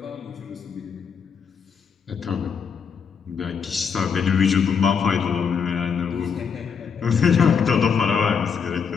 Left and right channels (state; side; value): quieter; right; 6.4 dB